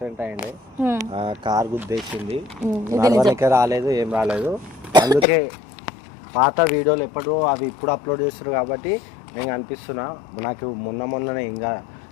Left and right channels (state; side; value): drops out; right; at 5.2 s